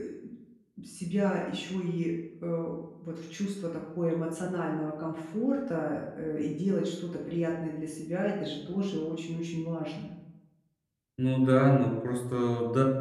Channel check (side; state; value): both; identical; correlation 1.00